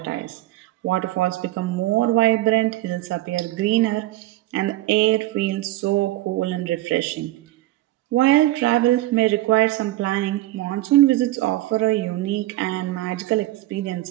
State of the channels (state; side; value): quieter; left; 16.5 dB